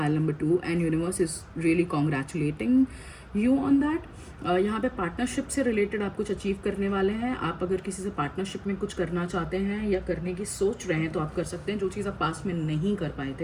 number 2, and universe is really congratulating you on that. यहाँ पे पार्टनरशिप से रिलेटेड आप कुछ अचीव करने वाले हैं। आप अगर किसी से पार्टनरशिप में कुछ करना चाहते हैं या करने की सोच रहे हैं तो आप कर सकते हैं, जो चीज़ आप पास्ट में नहीं कर पाए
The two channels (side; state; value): both; identical; correlation 1.00